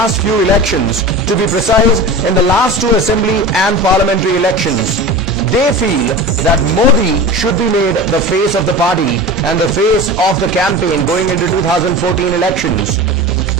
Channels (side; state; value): both; normal; correlation 0.31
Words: few elections. To be precise, in the last two assembly and parliamentary elections. They feel that Modi should be made the face of the party and the face of the campaign going into 2014 elections.